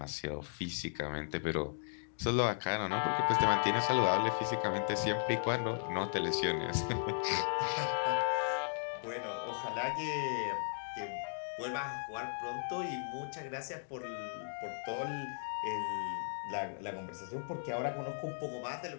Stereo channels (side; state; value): right; silent; digital silence